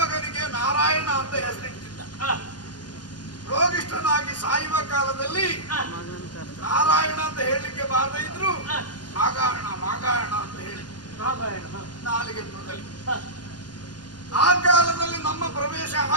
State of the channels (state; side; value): late; right; 0.70 ms